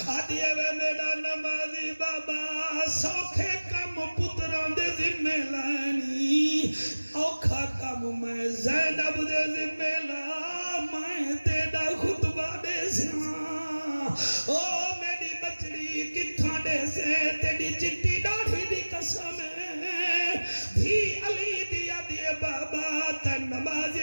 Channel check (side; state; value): both; inverted; correlation -1.00